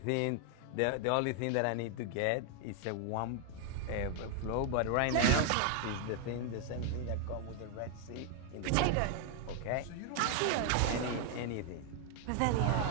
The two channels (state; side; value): different; both; correlation 0.00